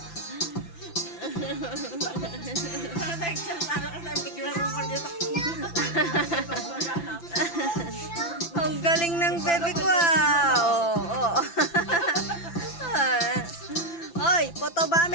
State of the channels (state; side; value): late; right; 5.9 ms